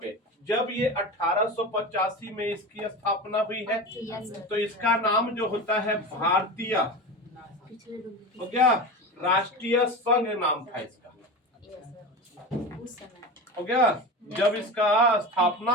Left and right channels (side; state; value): both; normal; correlation 0.27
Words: पे, जब ये 1885 में इसकी स्थापना हुई है, तो इसका नाम जो होता है भारतीय, हो गया, राष्ट्रीय संघ नाम था इसका। हो गया? जब इसका स्थापना